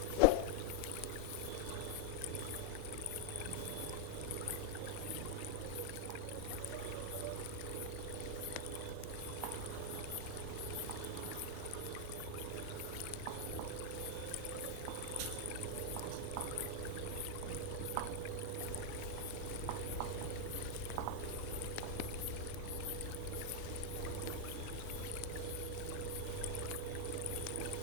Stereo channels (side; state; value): both; different; correlation 0.00